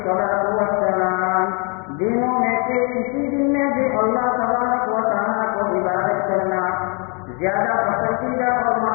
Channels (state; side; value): quieter; right; 35.6 dB